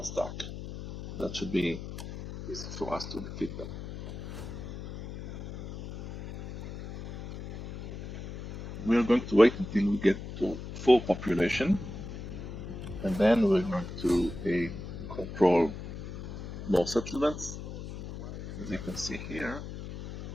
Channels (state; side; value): noise; left; hum, 9 dB below the sound